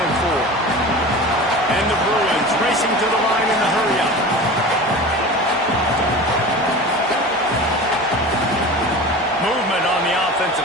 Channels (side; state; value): both; normal; correlation 0.34